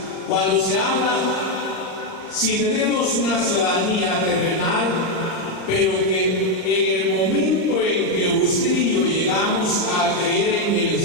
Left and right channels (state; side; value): late; right; 39 ms